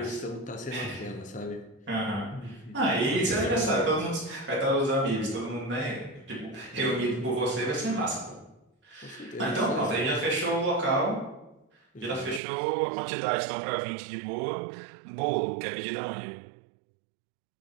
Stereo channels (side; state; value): left; drops out; at 12.4 s